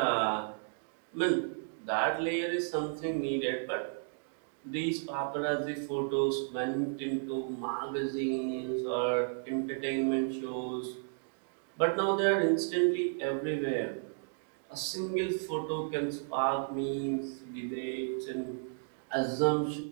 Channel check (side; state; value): left; silent; digital silence